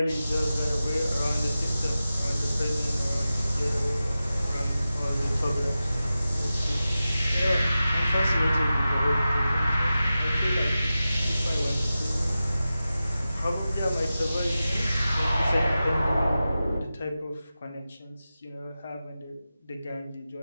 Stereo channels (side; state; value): both; inverted; correlation -0.93